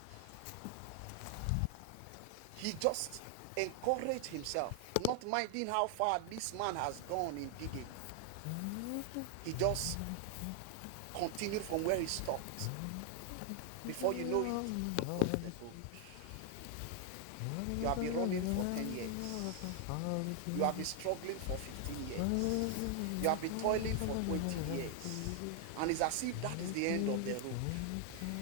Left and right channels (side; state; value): both; different; correlation 0.00